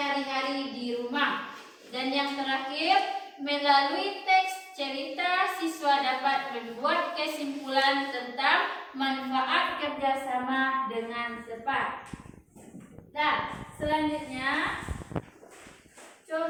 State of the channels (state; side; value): identical; both; correlation 1.00